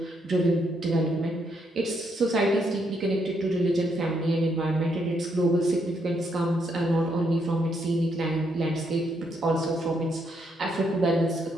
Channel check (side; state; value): both; normal; correlation 0.76